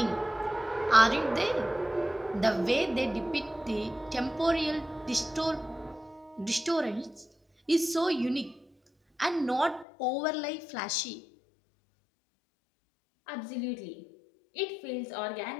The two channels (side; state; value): right; drops out; at 9.9 s